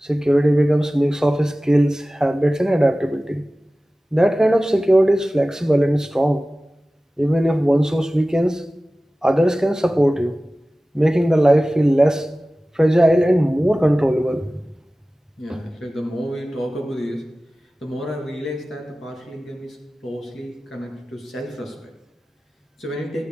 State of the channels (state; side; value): normal; both; correlation 0.96